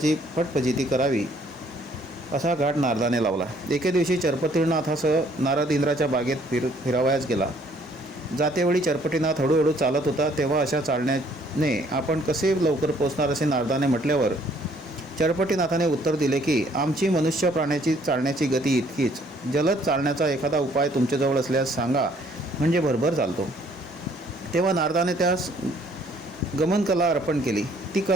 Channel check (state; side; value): normal; both; correlation 0.62